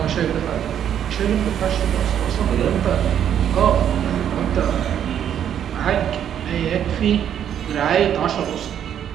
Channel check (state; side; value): quieter; left; 9.5 dB